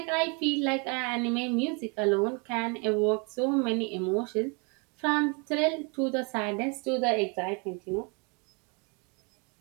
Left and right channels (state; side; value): quieter; left; 32.9 dB